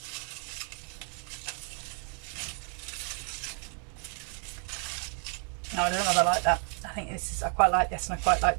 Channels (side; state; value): left; quieter; 39.6 dB